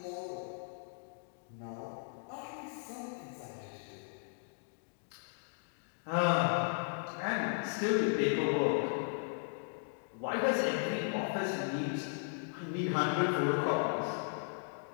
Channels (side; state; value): right; silent; digital silence